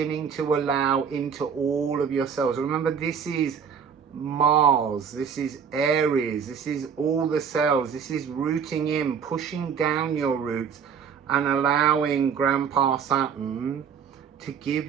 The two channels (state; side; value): quieter; left; 7.0 dB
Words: to allow into all of yourselves. Remember, this is Mars, this is Aries, this is all the cells, this is rooting in, pushing down your roots and allowing Grandpa Saturn to give